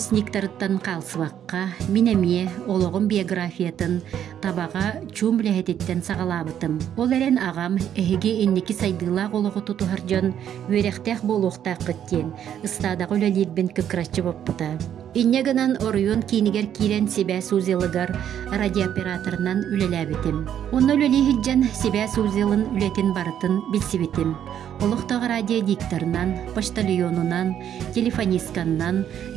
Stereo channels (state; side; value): quieter; left; 9.8 dB